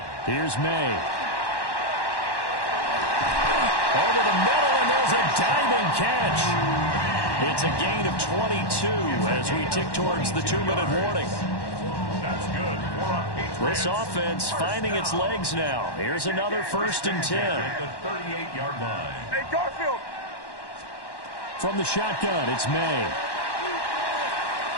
Here's May. Over the middle, and there's a diving catch. It's a gain of 22 as we tick towards the 2-minute warning. That's good for a Patriots. This offense finding its legs now. Here's another 1st and 10. At the 38-yard line. Hey, Garfield. From the shotgun, it's May.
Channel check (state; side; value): late; right; 1.1 ms